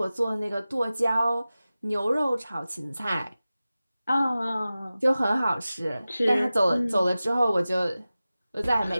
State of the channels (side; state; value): both; inverted; correlation -0.96